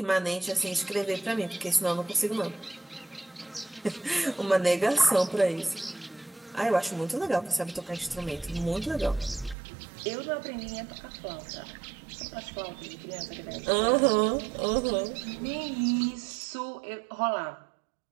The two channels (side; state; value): left; drops out; at 9.6 s